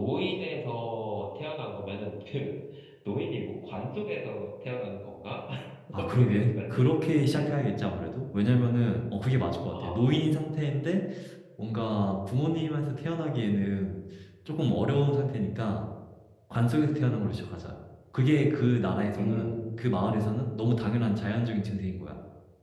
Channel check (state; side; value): identical; both; correlation 1.00